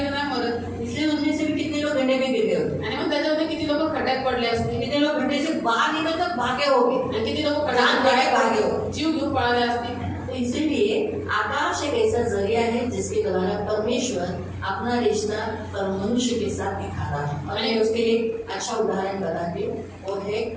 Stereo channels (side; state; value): both; identical; correlation 1.00